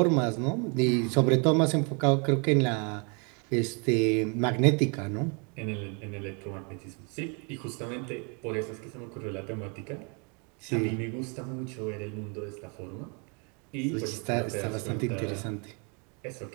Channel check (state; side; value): quieter; left; 35.0 dB